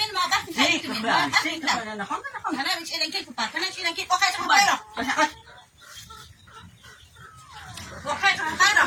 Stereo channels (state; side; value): identical; both; correlation 1.00